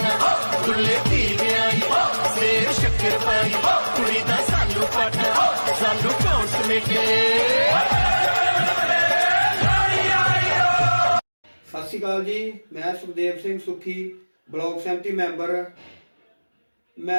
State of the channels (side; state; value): both; inverted; correlation -1.00